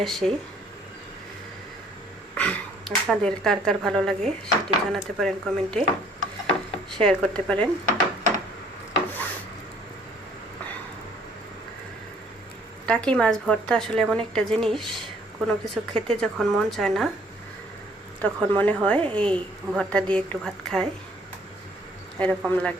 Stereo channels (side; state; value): both; normal; correlation 0.60